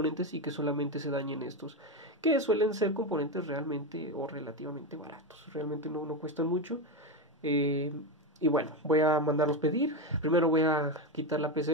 y que solamente se dañen estos, que suelen ser componentes realmente o relativamente baratos, realmente no cuestan mucho. eh, y bueno, voy a mandarlos pedir. Primero voy a quitar la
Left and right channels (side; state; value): both; normal; correlation 0.13